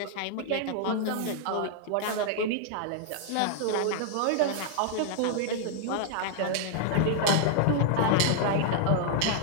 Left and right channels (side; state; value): both; different; correlation 0.00